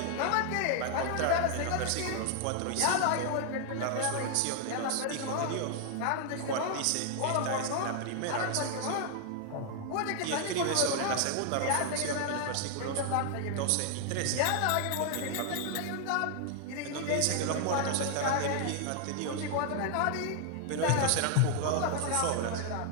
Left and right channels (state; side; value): different; both; correlation 0.00